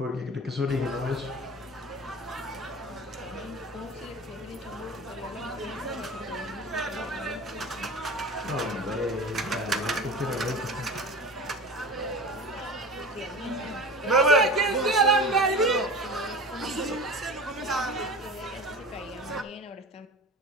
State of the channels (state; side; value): normal; both; correlation 0.33